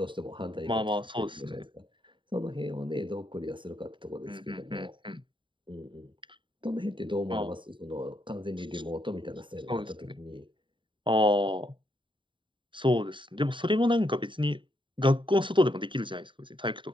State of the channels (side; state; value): left; late; 0.24 ms